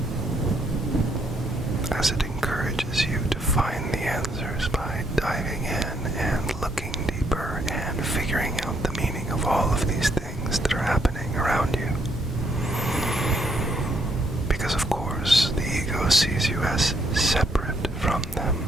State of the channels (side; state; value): both; normal; correlation 0.72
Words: as it encourages you to find the answers by diving in and looking deeper and figuring out the meaning of all of these things that are happening around you. Because of course, the ego sees you as separate from them.